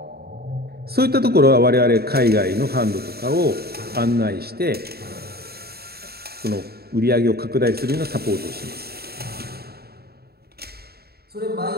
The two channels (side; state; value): left; late; 0.46 ms